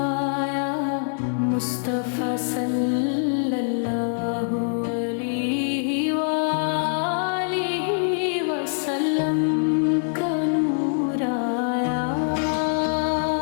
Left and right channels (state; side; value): silent; right; 59 dB below the other